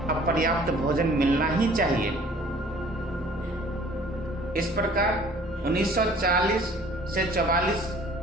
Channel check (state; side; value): normal; both; correlation 0.53